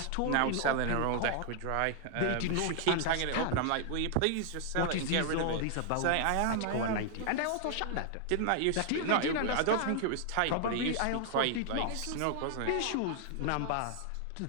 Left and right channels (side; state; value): both; different; correlation 0.00